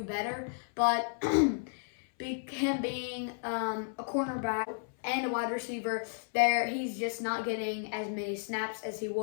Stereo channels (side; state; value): right; silent; 56 dB below the other